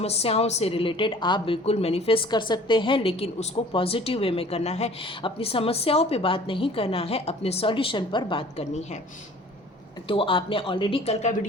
से रिलेटेड आप बिल्कुल मैनिफेस्ट कर सकते हैं, लेकिन उसको पॉजिटिव वे में करना है। अपनी समस्याओं पे बात नहीं करना है, अपने सॉल्यूशन पर बात करनी है। तो आपने ऑलरेडी कल का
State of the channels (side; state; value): both; normal; correlation 0.49